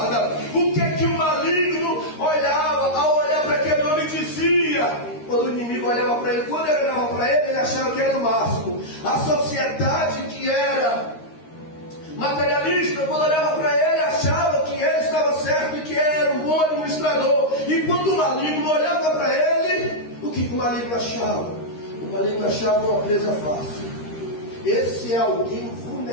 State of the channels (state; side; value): late; right; 13 ms